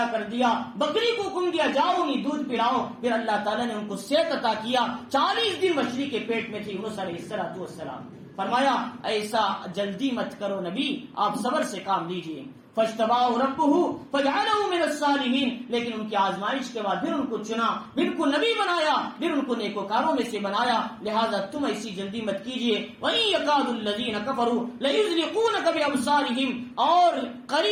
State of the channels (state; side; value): identical; both; correlation 1.00